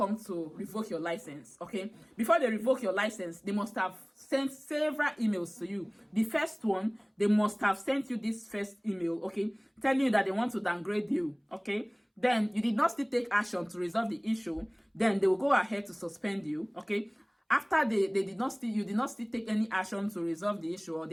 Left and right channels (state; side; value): identical; both; correlation 1.00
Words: to revoke your license, okay? Before they revoke your license, they must have sent several emails to you. The first one, they must have sent you this first email, okay, telling you that they want to downgrade you, okay? Then you did not still take action to resolve the issue. Then they will go ahead to suspend you, okay? After you did not still take any action to resolve the issue, or